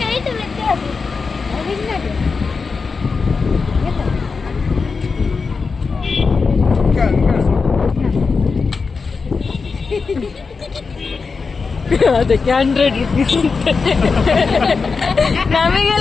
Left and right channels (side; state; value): right; quieter; 4.8 dB